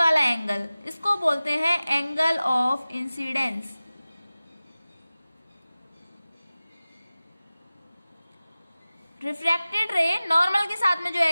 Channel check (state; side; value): inverted; both; correlation -0.97